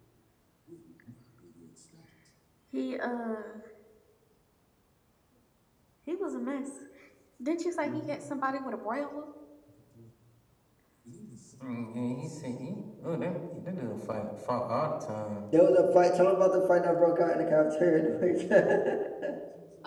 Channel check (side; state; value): both; identical; correlation 1.00